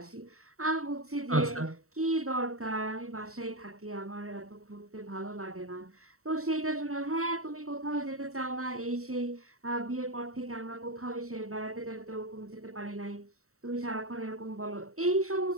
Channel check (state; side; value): late; left; 0.64 ms